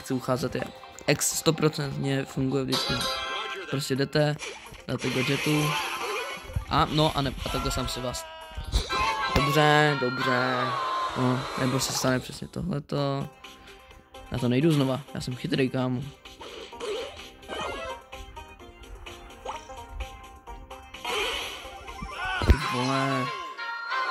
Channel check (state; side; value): identical; both; correlation 1.00